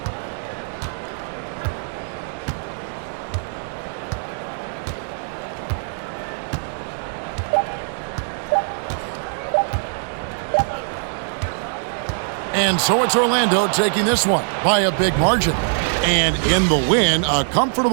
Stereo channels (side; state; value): left; silent; digital silence